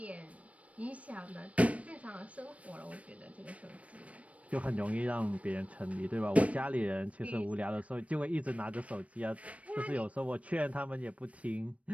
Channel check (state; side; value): late; left; 0.065 ms